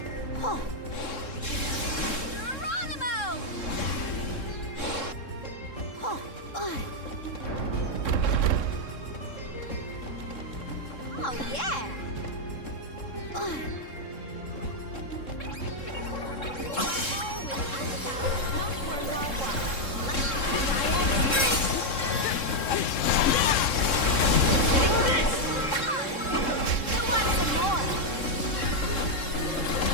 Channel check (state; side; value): late; right; 3.7 ms